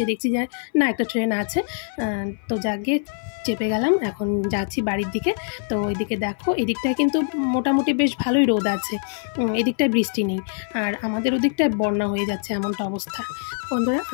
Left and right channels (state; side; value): silent; right; 58 dB below the other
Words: দেখছি যে না, একটা ট্রেন আছে। তো যাকে চেপে গেলাম, এখন যাচ্ছি বাড়ির দিকে। তো ওইদিকে দেখো, এদিকটায় কিন্তু মোটামুটি বেশ ভালোই রোদ আছে, এদিকটায় বৃষ্টি নেই। আর আমাদের ওদিকটায় বন্যা হয়ে যাচ্ছে, এমনটা অবস্থা। বন্ধুরা,